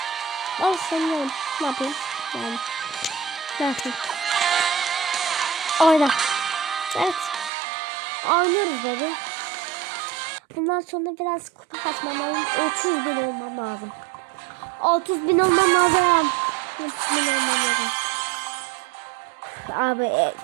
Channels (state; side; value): drops out; left; at 7.5 s